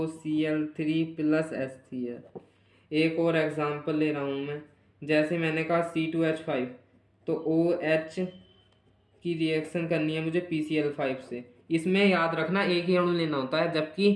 plus HCl। एक और एग्जांपल ले रहा हूँ मैं, जैसे मैंने कहा C2H5, तो OH की रिएक्शन करनी है मुझे PCl5 से। इसमें याद रखना एक ही अणु लेना होता है,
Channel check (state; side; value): identical; both; correlation 1.00